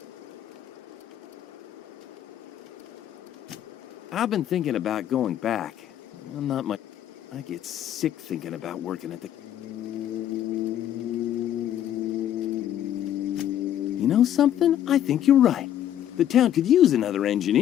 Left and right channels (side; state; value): right; quieter; 11.0 dB